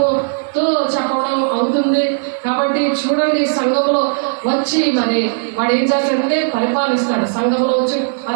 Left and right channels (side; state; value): left; silent; 69 dB below the other